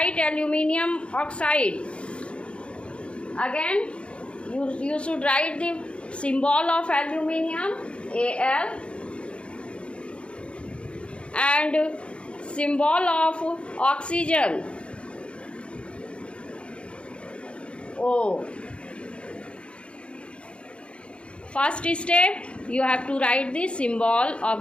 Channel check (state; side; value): late; right; 0.058 ms